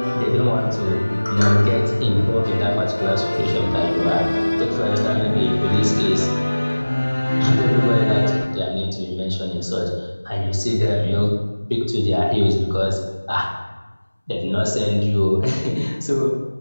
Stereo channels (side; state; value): both; inverted; correlation -1.00